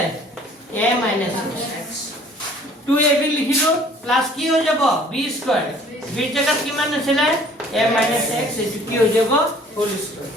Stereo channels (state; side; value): normal; both; correlation 0.54